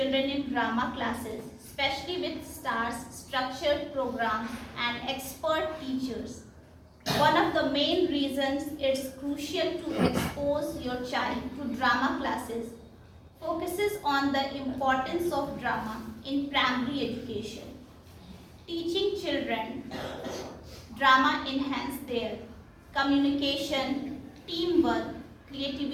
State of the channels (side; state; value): both; identical; correlation 1.00